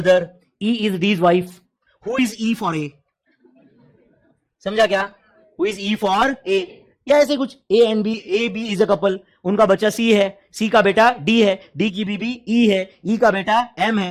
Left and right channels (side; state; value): both; identical; correlation 1.00